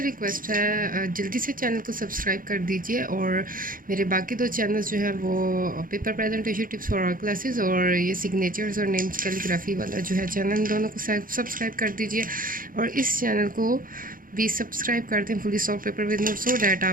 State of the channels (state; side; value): late; left; 0.40 ms